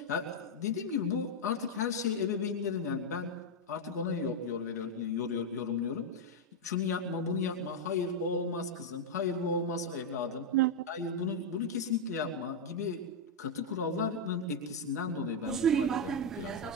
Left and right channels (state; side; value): normal; both; correlation 0.00